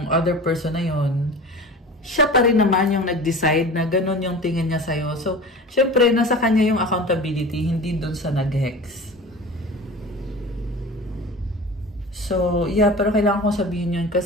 other person na yun, siya pa rin naman yung nag-decide na ganun yung tingin niya sa'yo. So, syempre, nasa kanya yung accountability, hindi dun sa nag-hex. So, yeah, pero kailangan kong sabihin yun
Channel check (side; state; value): both; normal; correlation 0.36